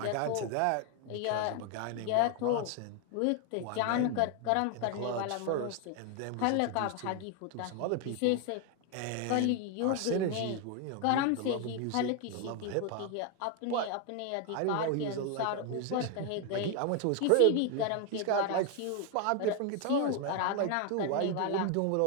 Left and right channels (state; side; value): different; both; correlation 0.01